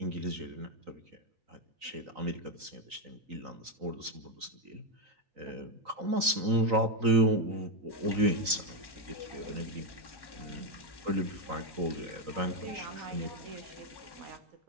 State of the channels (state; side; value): late; left; 3.9 ms